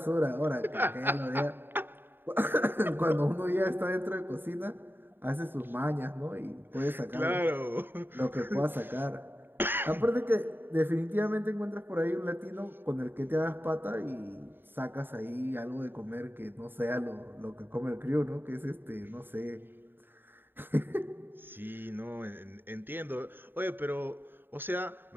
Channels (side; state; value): left; late; 0.098 ms